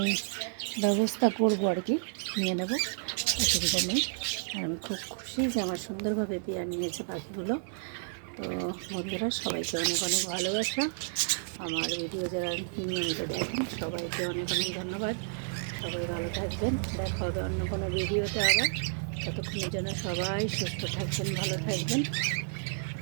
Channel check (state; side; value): silent; left; digital silence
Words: ব্যবস্থা করব আর কি, নিয়ে নেব, অসুবিধা নেই। আর আমি খুব খুশি যে আমার সুন্দরভাবে পেয়ার নিয়েছে পাখিগুলো। তো বন্ধুরা, সবাইকে অনেক অনেক ভালোবাসা। আমার ভিডিও যারা নিয়মিত দেখেন সবাইকে অনেক অনেক ধন্যবাদ। সবাই ভালো থাকবেন, দেখা হবে অন্য কোনো ভিডিওতে আবার। ততক্ষণের জন্য সবাই সুস্থ থাকবেন, ভালো থাকবেন,